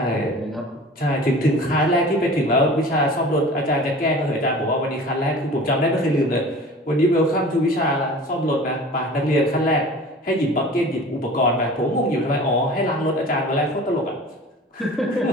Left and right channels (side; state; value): both; normal; correlation 0.41